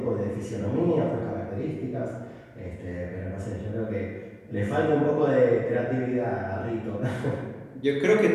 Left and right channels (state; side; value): identical; both; correlation 1.00